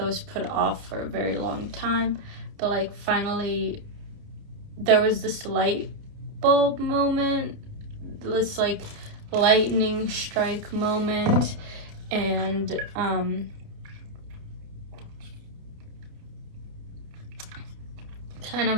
was put off for a very long time, but like finally there was this light bulb moment, this like lightning strike moment, and kind of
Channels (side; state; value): left; late; 29 ms